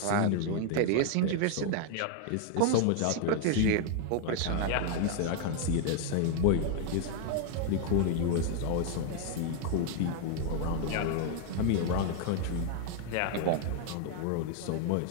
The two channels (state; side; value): different; both; correlation 0.00